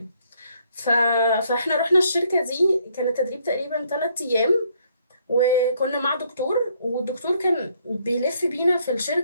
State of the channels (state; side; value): inverted; both; correlation -0.68